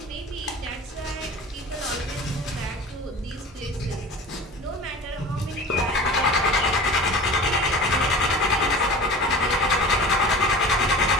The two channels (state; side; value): normal; both; correlation 0.37